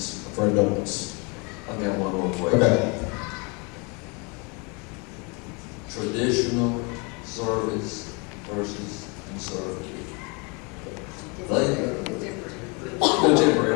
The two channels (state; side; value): quieter; right; 31.1 dB